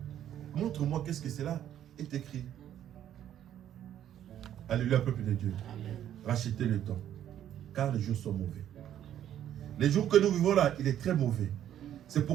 montre-moi qu'est-ce que c'est là, est écrit. Alléluia, peuple de Dieu. Amen. Rachetez le temps, car les jours sont mauvais. Les jours que nous vivons là, il est très mauvais. C'est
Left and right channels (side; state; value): left; quieter; 10.9 dB